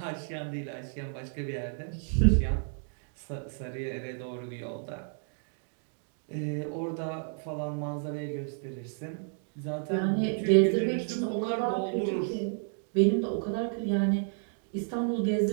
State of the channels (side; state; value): left; silent; 57 dB below the other